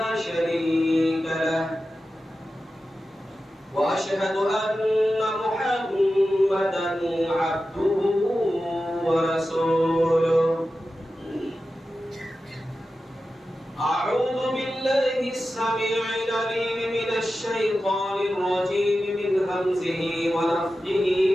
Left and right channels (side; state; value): both; normal; correlation 0.93